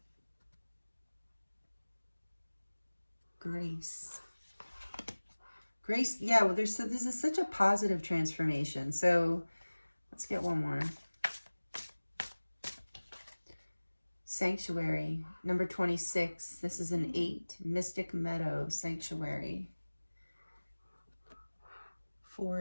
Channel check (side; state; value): both; inverted; correlation -1.00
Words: Grace. Grace, yeah, well, this is such a positive transformation. So let's get one more. Sanctuary, number 26. This is an 8. Mystic Meadow, Sanctuary. 4